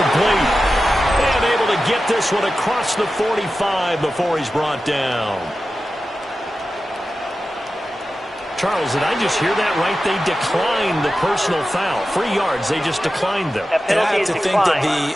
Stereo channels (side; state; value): both; normal; correlation 0.93